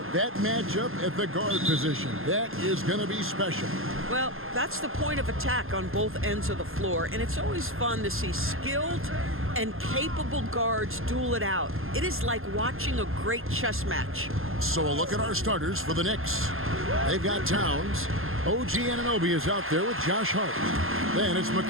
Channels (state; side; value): late; left; 0.60 ms